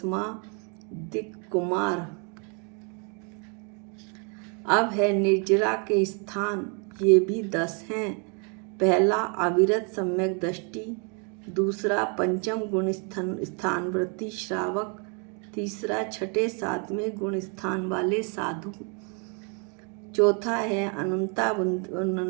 दिक् कुमार। अब है निर्जरा के स्थान। ये भी 10 हैं। पहला अविरत सम्यक दृष्टि, दूसरा पंचम गुण स्थान वृत्ति श्रावक, तीसरा 6ठे 7वें गुण स्थान वाले साधु, चौथा है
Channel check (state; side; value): quieter; left; 36.7 dB